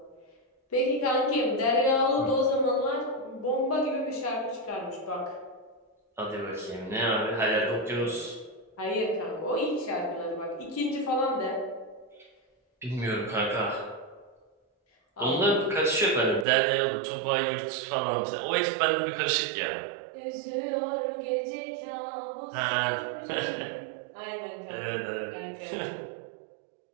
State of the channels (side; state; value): left; drops out; at 16.4 s